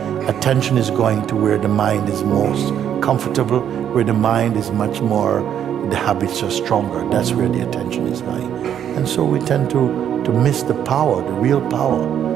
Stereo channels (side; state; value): left; quieter; 9.5 dB